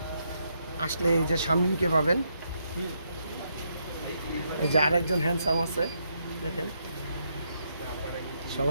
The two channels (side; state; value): both; inverted; correlation -0.78